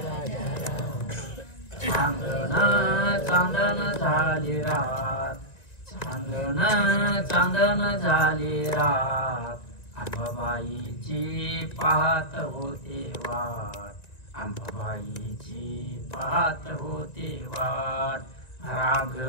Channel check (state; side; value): late; right; 1.9 ms